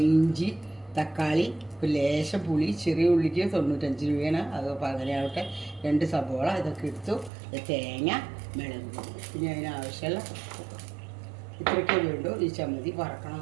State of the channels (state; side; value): drops out; left; at 7.3 s